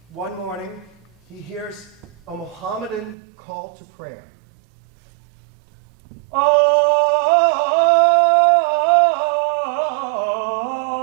one morning, he hears a Mohammedan call to prayer. Oh,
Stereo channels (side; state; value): left; drops out; at 3.2 s